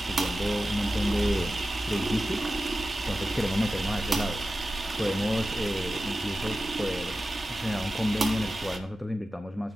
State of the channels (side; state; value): both; normal; correlation 0.93